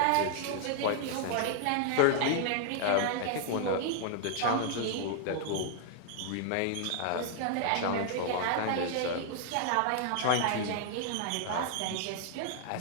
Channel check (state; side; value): different; both; correlation 0.00